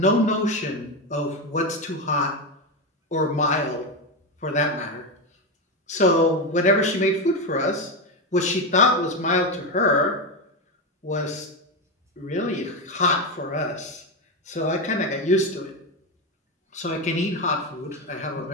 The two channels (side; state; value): both; normal; correlation 0.12